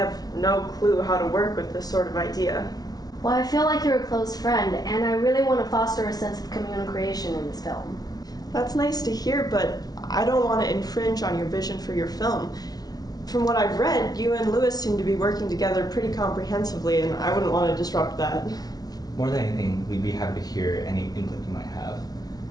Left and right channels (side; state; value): right; late; 0.19 ms